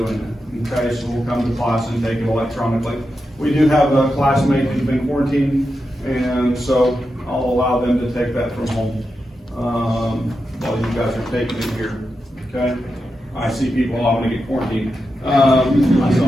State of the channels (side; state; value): both; normal; correlation 0.88